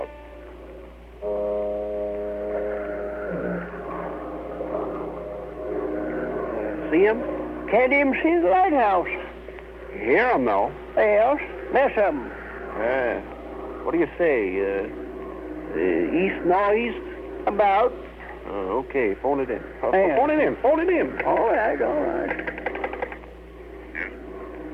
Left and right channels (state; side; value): identical; both; correlation 1.00